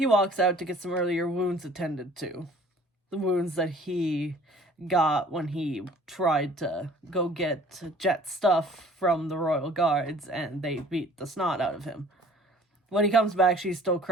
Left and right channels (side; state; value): both; normal; correlation 0.52